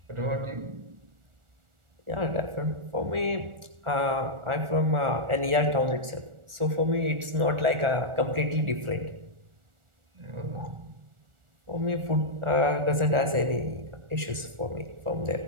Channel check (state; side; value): late; left; 1.4 ms